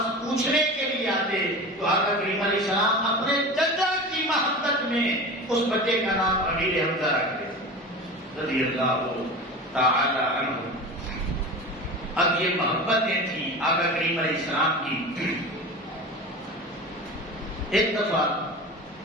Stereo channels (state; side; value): normal; both; correlation 0.31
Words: پوچھنے کے لیے آتے تو آقا کریم علیہ السلام اپنے چچا کی محبت میں اس بچے کا نام امیر حمزہ رکھتے رضی اللہ تعالی عنہ. اب یہ محبتیں تھیں آقا کریم علیہ السلام کی. ایک دفعہ